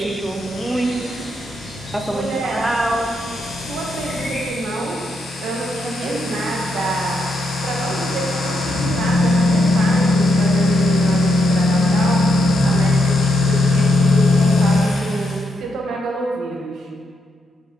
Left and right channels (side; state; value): both; normal; correlation 0.80